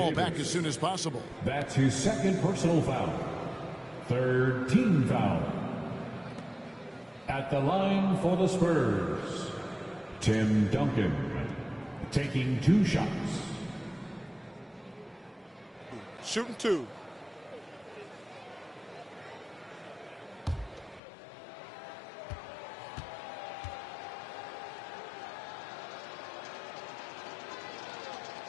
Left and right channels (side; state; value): right; drops out; at 21.0 s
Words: back as soon as possible. That's his second personal foul. Third team foul. At the line for the Spurs, Tim Duncan, taking 2 shots. Shooting 2.